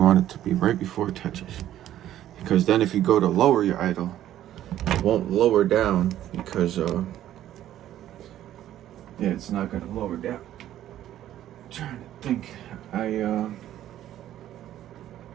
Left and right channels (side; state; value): left; quieter; 12.3 dB